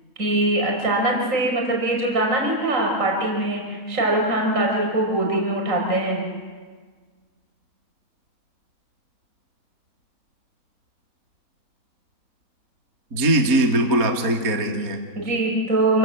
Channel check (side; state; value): left; late; 4.2 ms